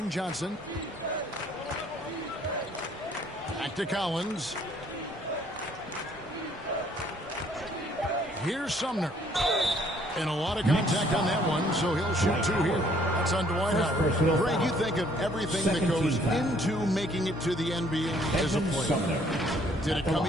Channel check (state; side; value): normal; both; correlation 0.62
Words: Johnson. Back to Collins. Here's Sumner. And a lot of contact on that one, so he'll shoot two here. That's on Dwight Howard. Greg, you think of everything that goes into making it to the NBA as a player. Did it come